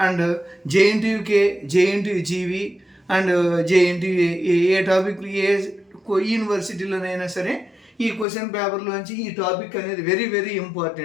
and JNTUK, JNTU GV and JNTU A topic ఏ యూనివర్సిటీలోనైనా సరే ఈ క్వశ్చన్ పేపర్లోంచి ఈ టాపిక్ అనేది వెరీ వెరీ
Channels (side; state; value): right; drops out; at 8.2 s